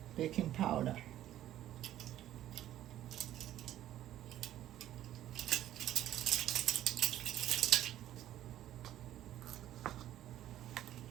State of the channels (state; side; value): quieter; left; 12.6 dB